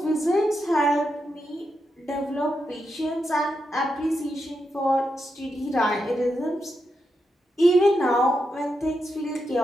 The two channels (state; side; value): normal; both; correlation 0.85